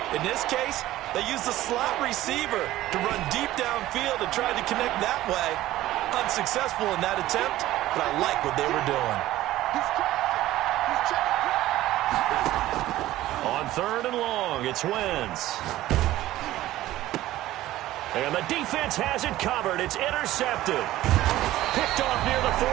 In this case, they used the slot receiver to run deep downfield and tried to connect that way. Unsuccessful in that attempt, but I like what they were doing. On 3rd and long, it's Wentz. And the defense has it covered. It's intercepted. Picked off near the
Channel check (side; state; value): left; quieter; 15.3 dB